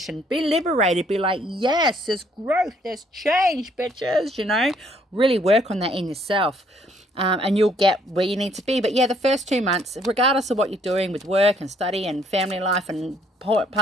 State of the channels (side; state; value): both; normal; correlation 0.65